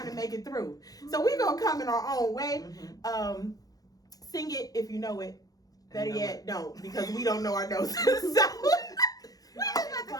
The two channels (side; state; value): right; late; 0.18 ms